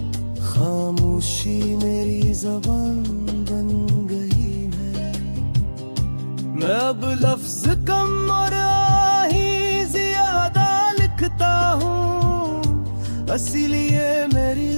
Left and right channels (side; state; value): both; inverted; correlation -1.00